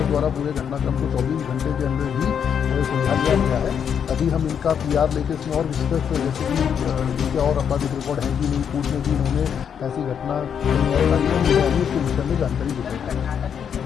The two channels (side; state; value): right; quieter; 7.8 dB